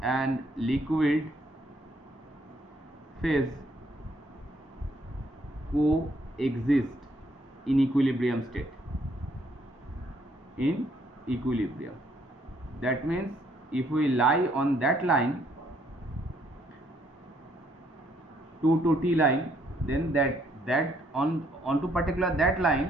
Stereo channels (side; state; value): both; normal; correlation 0.68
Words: and liquid phase coexist in equilibrium state. In equilibrium, that means if we lie on that line, 2 to t line, then that onto particular that